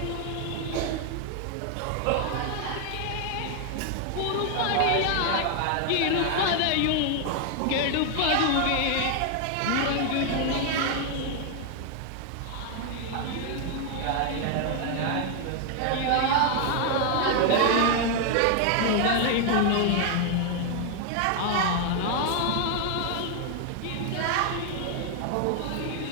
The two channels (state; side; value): different; both; correlation 0.00